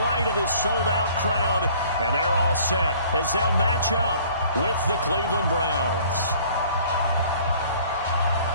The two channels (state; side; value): inverted; both; correlation -0.54